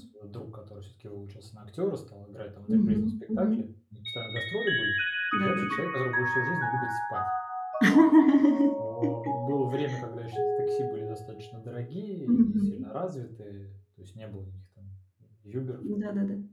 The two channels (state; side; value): identical; both; correlation 1.00